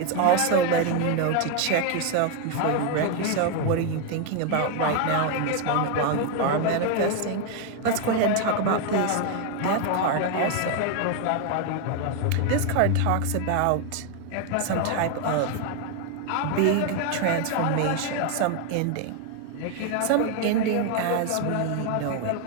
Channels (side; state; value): both; different; correlation 0.01